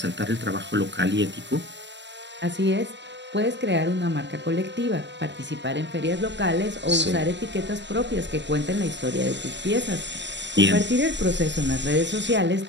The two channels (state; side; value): late; left; 0.52 ms